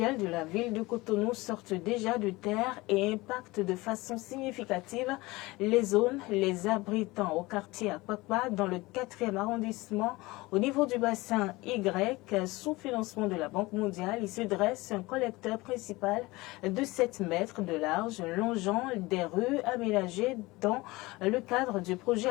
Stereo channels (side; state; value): right; quieter; 21.4 dB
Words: de la ville de Cotonou sortent déjà de terre et impactent de façon significative les zones les abritant au quartier Akpakpa dans le 4e arrondissement. Au niveau du bassin Y, sous financement de la Banque mondiale, il se dresse un collecteur principal de 7 mètres de large longeant des rues aménagées dans le cadre du projet